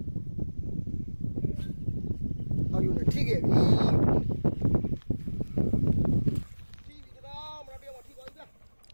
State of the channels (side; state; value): both; inverted; correlation -1.00